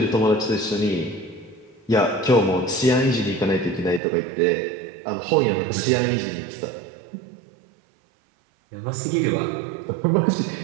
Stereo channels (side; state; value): left; drops out; at 4.0 s